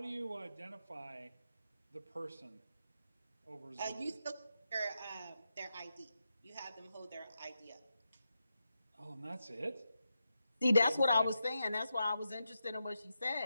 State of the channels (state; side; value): inverted; both; correlation -0.87